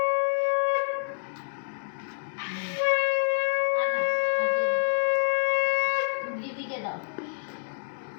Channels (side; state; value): right; silent; digital silence